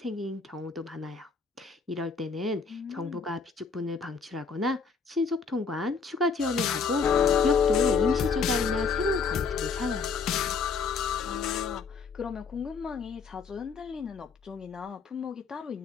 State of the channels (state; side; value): quieter; right; 5.2 dB